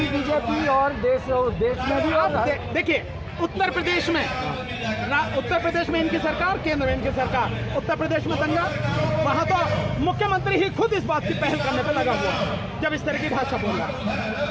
बीजेपी और देश में भी। आप देखिए उत्तर प्रदेश में इनकी सरकार, केंद्र में इनकी सरकार। उत्तर प्रदेश में दंगा, वहां तो मुख्यमंत्री ही खुद इस बात की पहल करने पर लगा हुआ जब इस तरह की भाषा बोल रहा।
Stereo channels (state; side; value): identical; both; correlation 1.00